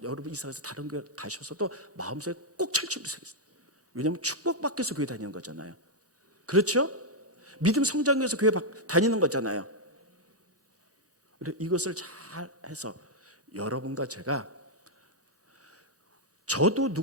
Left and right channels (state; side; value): normal; both; correlation -0.02